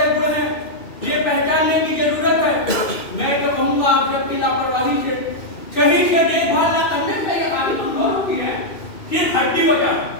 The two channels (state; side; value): late; right; 2.6 ms